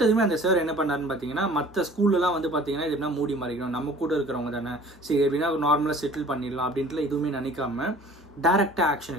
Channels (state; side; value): normal; both; correlation 0.48